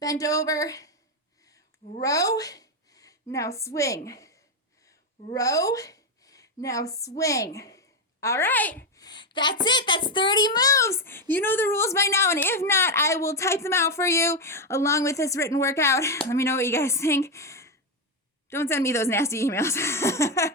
over, row, now swing. Row, now swing. All right, that's it. That's 30 moves. You know the rules by now, and if not, I will type them out for you along with this written workout. Let me know what you guys think. Don't send me those nasty emails.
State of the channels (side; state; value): both; normal; correlation 0.07